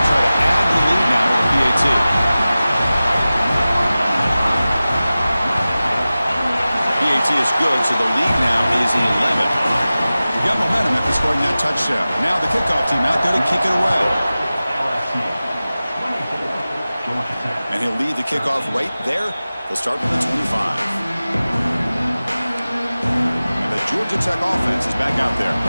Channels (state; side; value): inverted; both; correlation -0.96